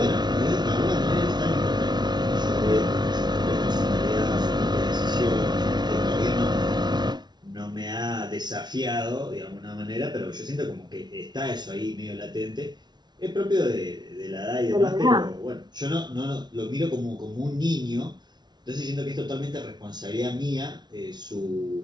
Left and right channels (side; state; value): left; late; 0.20 ms